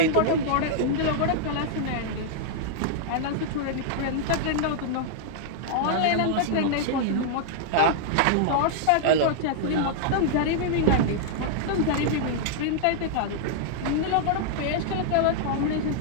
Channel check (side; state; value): both; different; correlation -0.01